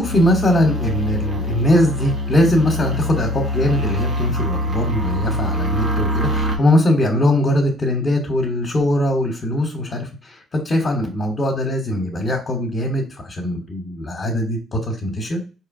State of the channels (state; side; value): normal; both; correlation 0.56